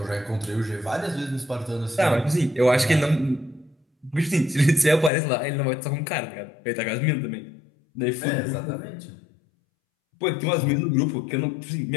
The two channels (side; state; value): right; drops out; at 5.1 s